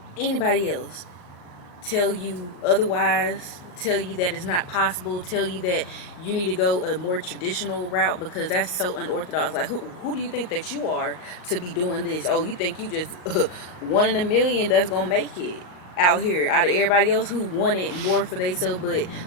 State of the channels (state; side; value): late; right; 39 ms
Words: anybody else tell you otherwise, tell you that it's not possible, tell you that you need to go a more traditional route, because that's so unorthodox. Like, who do you think that you are to be doing this? Oh, you think you just one in a million that's gonna make it out here out of everybody else who wanted more for themselves? But